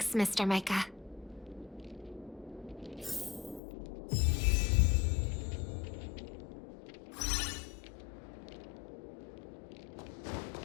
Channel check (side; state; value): right; drops out; at 3.6 s